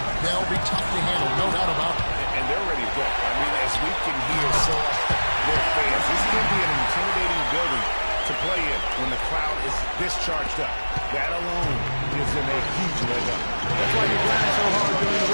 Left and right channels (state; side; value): inverted; both; correlation -1.00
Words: They'll be tough to handle, no doubt about it. And they're ready to go. I mean, as we can hear their fans, this is going to be an intimidating building to play in when the crowd is this charged up. That alone gives them a huge leg up. That's why you grind so hard during the